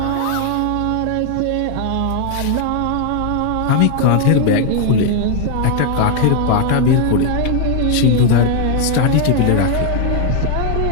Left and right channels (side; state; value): both; different; correlation 0.00